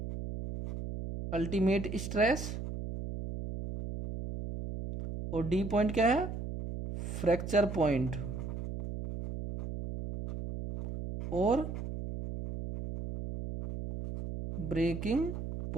अल्टीमेट स्ट्रेस, और डी पॉइंट क्या है, फ्रैक्चर पॉइंट, और ब्रेकिंग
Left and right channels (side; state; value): right; noise; hum, 6 dB below the sound